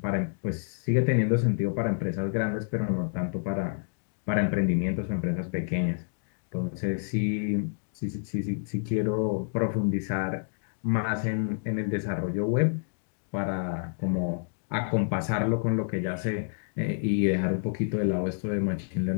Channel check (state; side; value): silent; right; digital silence